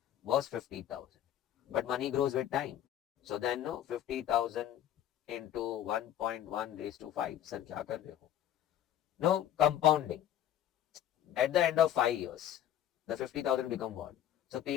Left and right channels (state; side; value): quieter; right; 11.1 dB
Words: was 50,000. But money grows with time. So then 50,000 into 1.1 raised to 5. Sir, kya kar rahe ho? No, compounding. At the end of 5 years, the 50,000 become what? So P